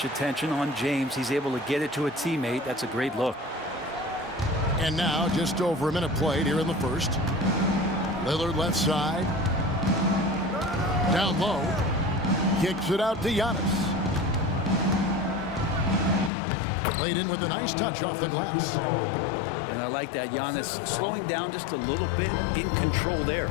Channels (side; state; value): right; drops out; at 16.3 s